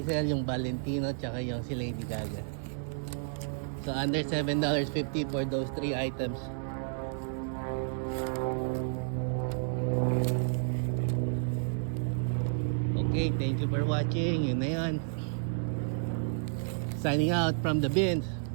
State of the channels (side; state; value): left; silent; digital silence